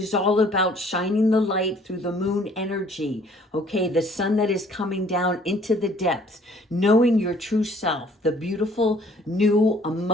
all about shining the light through the moon energy, okay? The sun that is coming down into the depths, knowing your true self, the beautiful, new,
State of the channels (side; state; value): both; normal; correlation 0.57